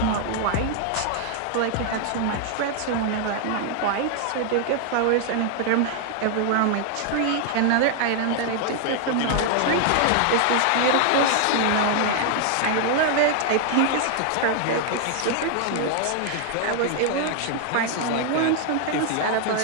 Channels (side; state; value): both; different; correlation 0.00